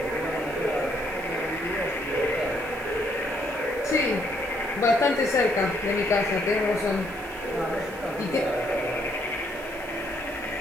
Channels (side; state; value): right; noise; hiss, 21 dB below the sound